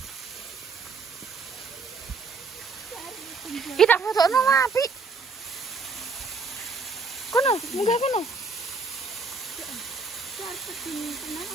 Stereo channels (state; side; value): quieter; left; 4.3 dB